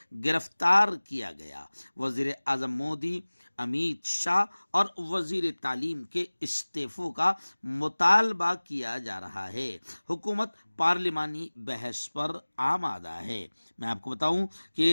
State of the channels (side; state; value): both; inverted; correlation -1.00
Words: گرفتار کیا گیا۔ وزیر اعظم مودی، امیت شاہ اور وزیر تعلیم کے استعفوں کا مطالبہ کیا جا رہا ہے۔ حکومت پارلیمانی بحث پر آمادہ ہے۔ میں آپ کو بتاؤں